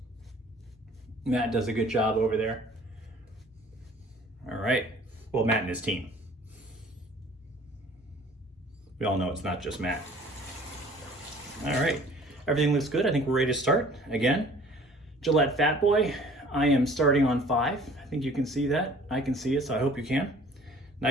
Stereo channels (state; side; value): normal; both; correlation 0.51